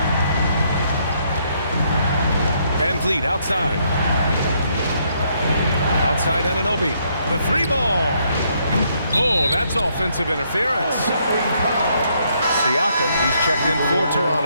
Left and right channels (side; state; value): both; inverted; correlation -0.72